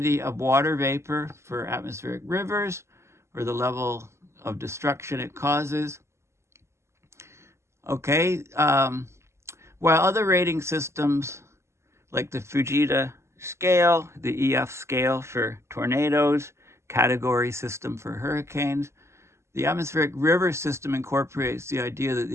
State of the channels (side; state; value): left; late; 0.13 ms